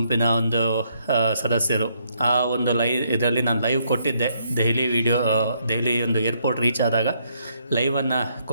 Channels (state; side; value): inverted; both; correlation -0.72